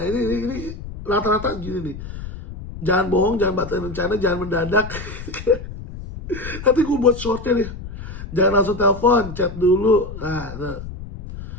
ini rata-rata gini nih. Jangan bohong, jangan batalin rencana, jangan mendadak. Nanti gue buat shortnya nih. Jangan langsung telepon, chat dulu. Nah.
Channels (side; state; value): left; noise; rumble, 11 dB below the sound